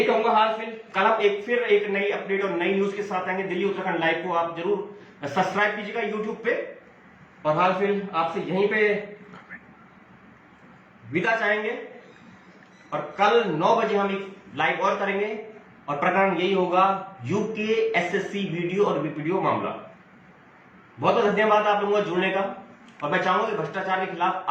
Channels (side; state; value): both; identical; correlation 1.00